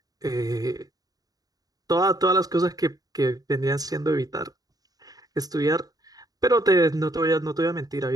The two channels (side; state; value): left; late; 0.18 ms